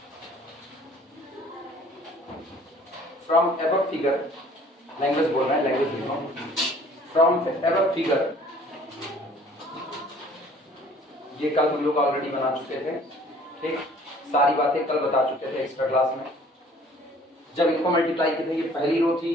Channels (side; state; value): both; normal; correlation 0.53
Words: फ्रॉम एबव फिगर, लैंग्वेज बोल रहे हैं, लैंग्वेज लिख रहा हूं, फ्रॉम एबव फिगर, ये कल हम लोग ऑलरेडी बना चुके थे। ठीक, सारी बातें कल बता चुके थे एक्स्ट्रा क्लास में। जब इनको मल्टीप्लाई किए थे, ये पहली रो थी,